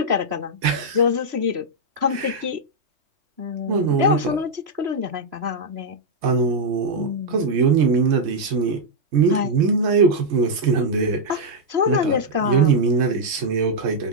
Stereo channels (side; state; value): left; late; 3.6 ms